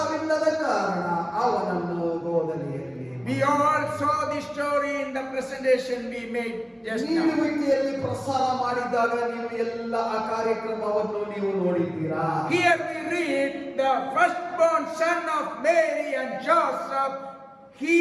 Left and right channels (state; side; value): identical; both; correlation 1.00